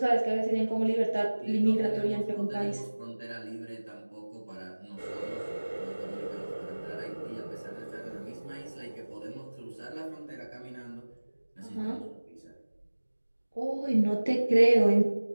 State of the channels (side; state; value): both; inverted; correlation -1.00